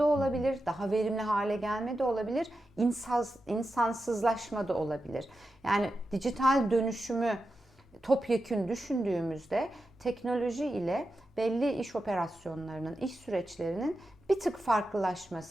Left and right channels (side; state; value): both; normal; correlation 0.90